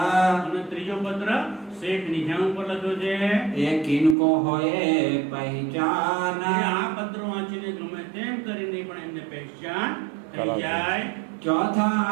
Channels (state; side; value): drops out; left; at 4.2 s